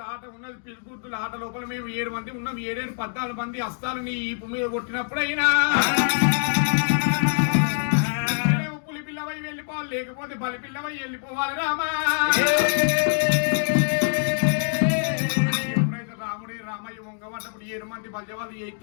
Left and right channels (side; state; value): right; silent; digital silence